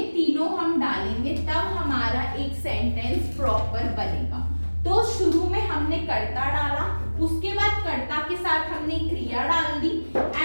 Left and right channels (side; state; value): both; inverted; correlation -1.00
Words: तीनों हम डालेंगे, तब हमारा एक सेंटेंस प्रॉपर बनेगा. तो शुरू में हमने कर्ता डाला, उसके बाद कर्ता के साथ हमने क्रिया डाल दी,